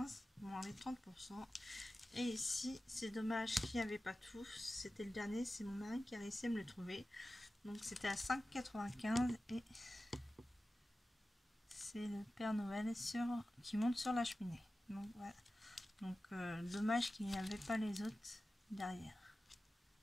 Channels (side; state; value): both; normal; correlation 0.95